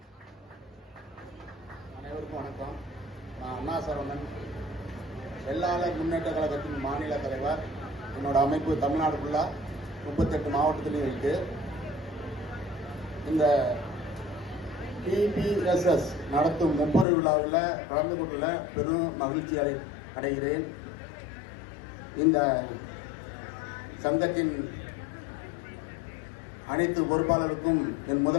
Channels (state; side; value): drops out; right; at 17.1 s